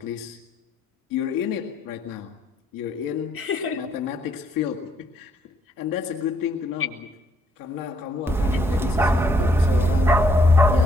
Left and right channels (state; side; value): normal; both; correlation 0.70